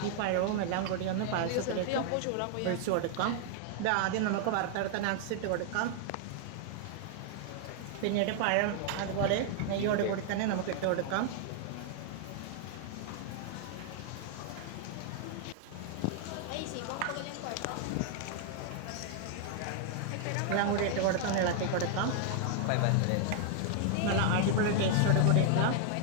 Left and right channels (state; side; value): different; both; correlation 0.00